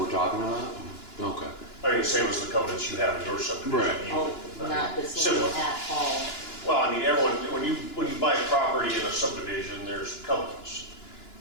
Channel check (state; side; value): late; right; 2.9 ms